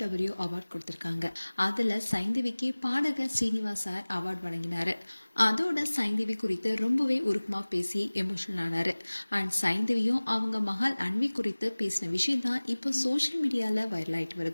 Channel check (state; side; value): inverted; both; correlation -1.00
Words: அவார்ட் கொடுத்திருக்காங்க. அதுல சைந்தவிக்கு பாடகர் ஸ்ரீனிவாஸ் சார் அவார்ட் வழங்கினாரு. அதோட சைந்தவி குறித்து ரொம்பவே உருக்கமா பேசி எமோஷனல் ஆனாரு. அண்ட் சைந்தவியும் அவங்க மகள் அன்வி குறித்து பேசின விஷயம் தான் இப்போ சோசியல் மீடியால வைரல் ஆயிட்டு